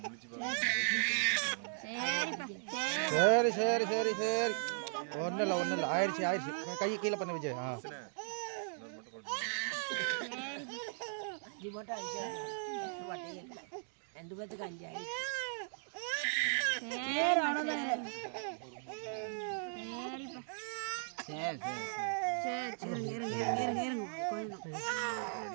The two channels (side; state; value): left; silent; digital silence